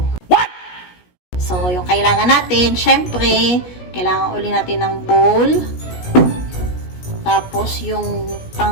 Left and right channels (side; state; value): right; late; 17 ms